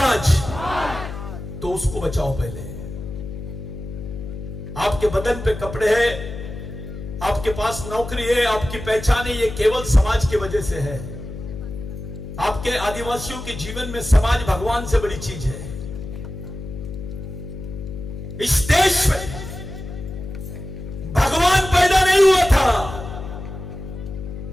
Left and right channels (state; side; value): noise; left; hum, 10 dB below the sound